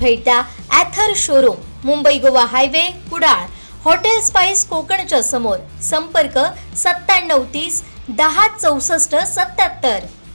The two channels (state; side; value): inverted; both; correlation -1.00